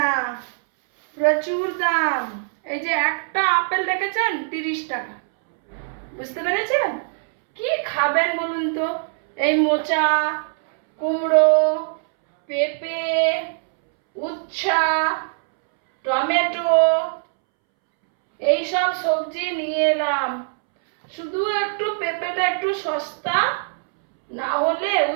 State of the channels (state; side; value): silent; left; 64 dB below the other